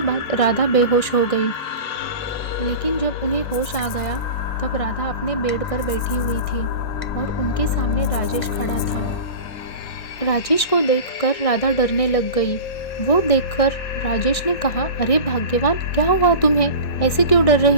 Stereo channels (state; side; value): late; right; 2.0 ms